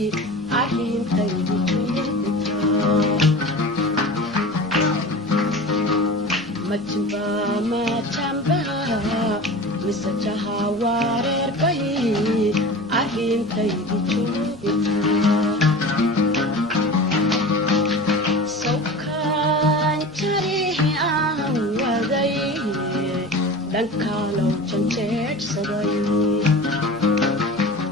arrintaydu majba majamba misajaha wareer bay arrintaydu dhankalow janjeedhsaday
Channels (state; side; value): normal; both; correlation 0.35